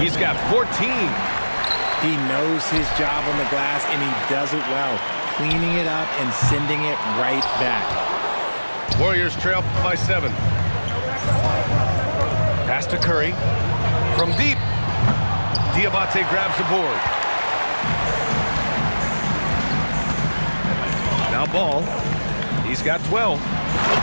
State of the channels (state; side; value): inverted; both; correlation -1.00